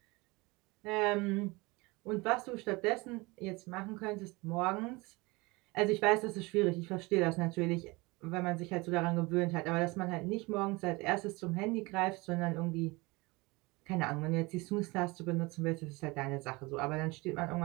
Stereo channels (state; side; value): quieter; left; 24.2 dB